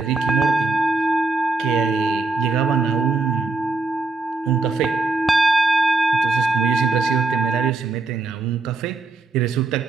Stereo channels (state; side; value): quieter; left; 3.5 dB